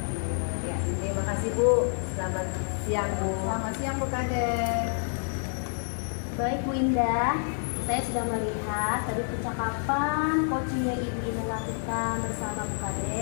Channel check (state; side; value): silent; right; digital silence